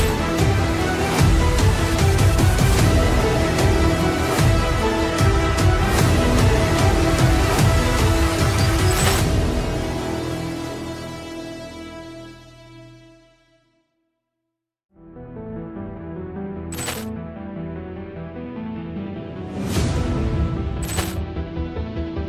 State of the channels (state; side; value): identical; both; correlation 1.00